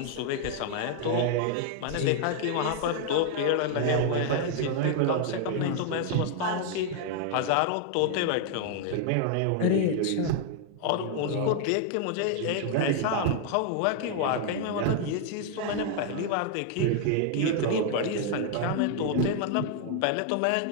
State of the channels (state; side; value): different; both; correlation 0.00